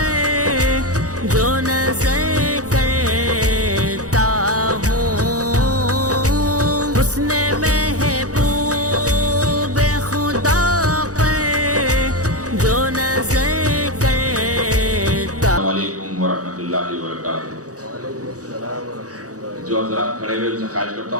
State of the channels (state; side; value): late; left; 0.67 ms